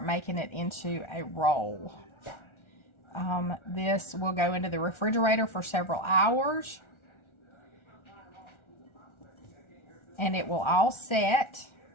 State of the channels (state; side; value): late; right; 1.4 ms